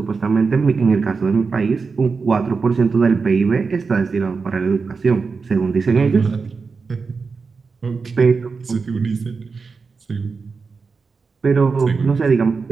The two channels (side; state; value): left; quieter; 4.8 dB